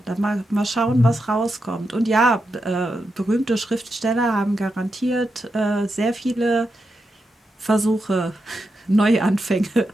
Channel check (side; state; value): both; normal; correlation 0.86